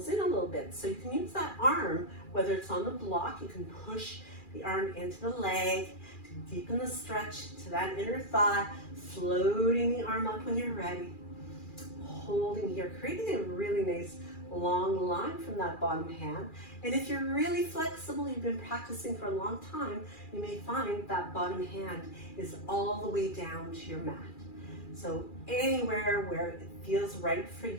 in a little bit. So you can use that arm, whether it's on the block, you can push the arm into the leg, to deepen the stretch to that inner thigh, floating the arm up when you're ready, holding here, creating a really nice long line from that bottom hand. And if you're really flexible, you've been practicing for a long time, you may find that bottom hand is all the way down to your mat. So anywhere where it feels right for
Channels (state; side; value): late; right; 2.4 ms